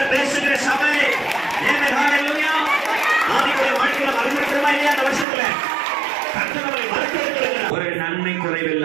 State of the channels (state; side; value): drops out; left; at 5.2 s